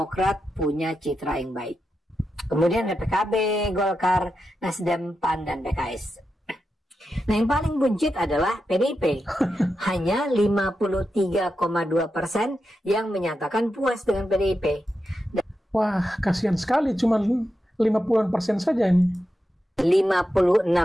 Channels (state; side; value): normal; both; correlation 0.88